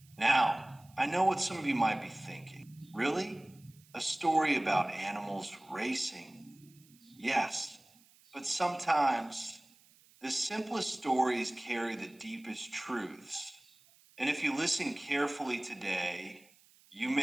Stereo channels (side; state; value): right; noise; hiss, 28 dB below the sound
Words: Now, I know what some of you might be thinking. Really? A story about animals racing? Yes, but sometimes the simplest stories carry the deepest truths. And if you listen carefully today, you